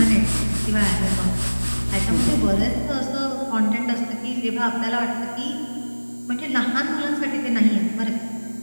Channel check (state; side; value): inverted; both; correlation -1.00